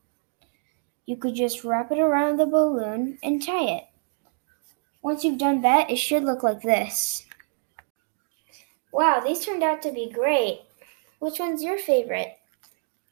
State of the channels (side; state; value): left; silent; 59 dB below the other